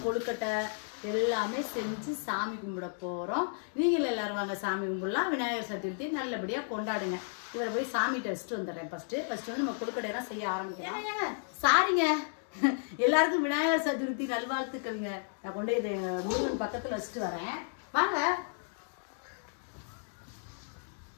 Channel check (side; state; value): right; silent; digital silence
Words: கொழுக்கட்டை எல்லாமே செஞ்சு சாமி கும்பிட போகிறோம். நீங்கள் எல்லாரும் வாங்க சாமி கும்பிடலாம். விநாயகர் சதுர்த்தி நல்லபடியாக கொண்டாடுங்க. இவரை போய் சாமிகிட்ட வச்சுட்டு வந்துடுறேன். ஃபஸ்ட்டு நம்ம கொழுக்கட்டையெல்லாம் செய்ய ஆரம்பிக்கலாம். சாரிங்க, எல்லாருக்கும் விநாயகர் சதுர்த்தி நல்வாழ்த்துக்கள்ங்க. நான் கொண்டு இதை முருகன் பக்கத்தில் வச்சுட்டு வரேன். வாங்க.